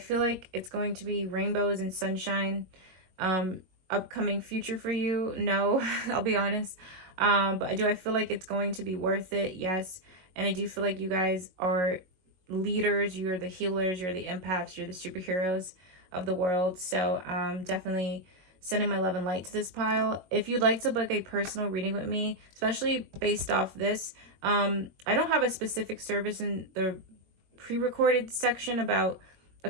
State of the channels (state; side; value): late; left; 21 ms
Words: like it's going to be rainbows and sunshine? Upcoming future for you? No, I'll be honest. But do I feel like it's going to be worth it? Yes. And I do feel like you guys are leaders, you're the healers, you're the empaths, you're the superheroes of the world. So definitely sending my love and light to this pile. If you'd like to book a personal reading with me, especially based off this, I don't have a specific service in the pre-recorded section about a